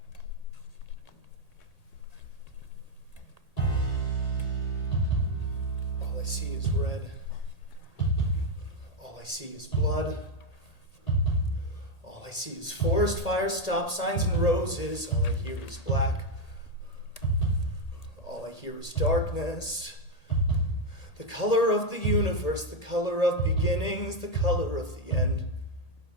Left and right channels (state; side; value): late; right; 1.8 ms